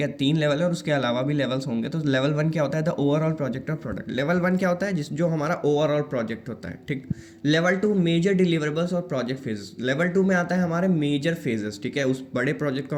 है, 3 लेवल है और उसके अलावा भी लेवल्स होंगे। तो लेवल 1 क्या होता है, the overall project of product. Level 1 क्या होता है, जो हमारा ओवरऑल प्रोजेक्ट होता है। ठीक, लेवल 2 मेजर डिलीवरेबल्स और प्रोजेक्ट फेजेस। लेवल 2 में आता है हमारे मेजर फेजेस। ठीक है, उस बड़े प्रोजेक्ट को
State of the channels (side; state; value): both; identical; correlation 1.00